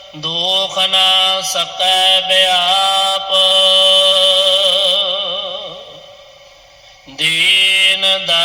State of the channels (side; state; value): both; identical; correlation 1.00